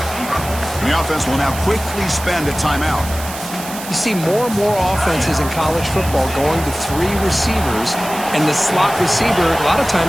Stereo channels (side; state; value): right; noise; hiss, 11 dB below the sound